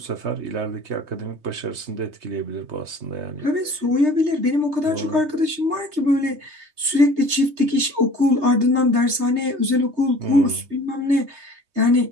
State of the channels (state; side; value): late; left; 3.2 ms